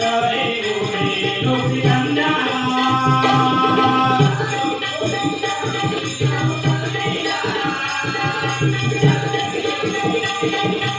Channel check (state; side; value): identical; both; correlation 1.00